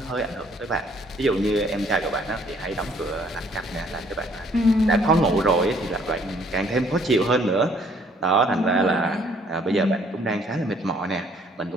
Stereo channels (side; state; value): both; normal; correlation 0.62